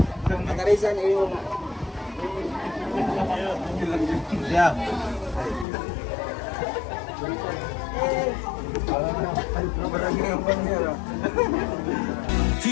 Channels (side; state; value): right; drops out; at 5.7 s